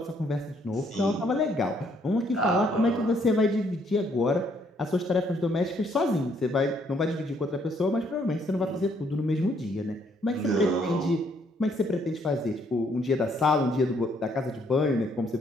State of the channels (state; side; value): normal; both; correlation 0.69